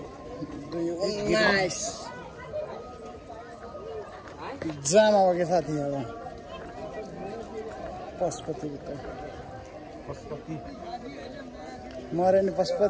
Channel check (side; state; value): both; identical; correlation 1.00